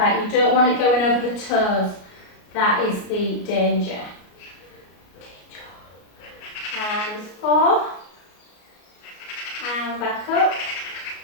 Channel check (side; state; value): right; late; 33 ms